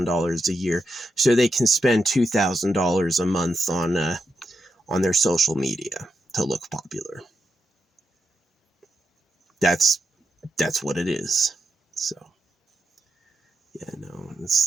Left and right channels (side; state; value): both; normal; correlation 0.85